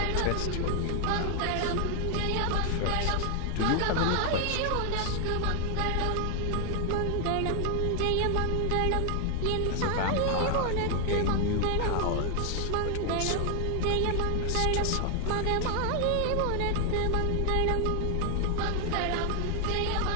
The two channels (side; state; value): both; different; correlation 0.00